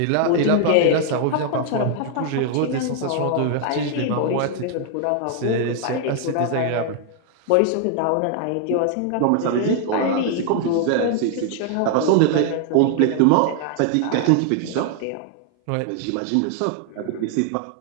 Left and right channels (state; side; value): different; both; correlation 0.00